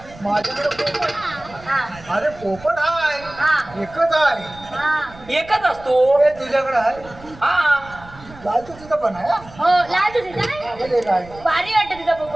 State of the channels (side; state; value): right; noise; rumble, 20 dB below the sound